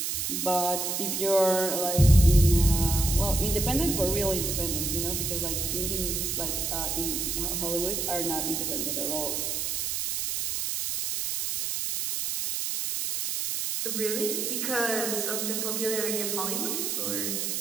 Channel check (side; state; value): right; noise; hiss, 1 dB below the sound